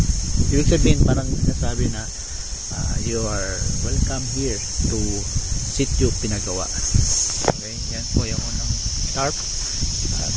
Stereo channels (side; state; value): both; identical; correlation 1.00